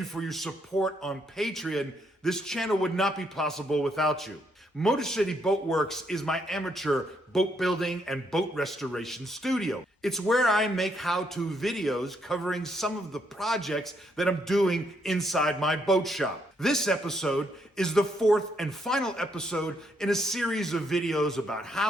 for your support on Patreon. This channel would not be possible without you. Motor City Boat Werks is my amateur boat building and boat restoration studio. It's where I make how-to videos covering some of the projects that I'm doing inside my boat shop. This episode is the fourth and final episode in a series of videos about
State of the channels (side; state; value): both; normal; correlation 0.74